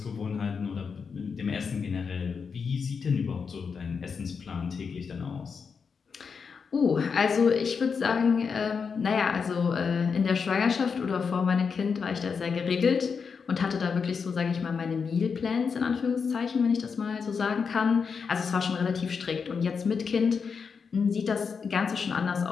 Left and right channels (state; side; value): quieter; right; 5.7 dB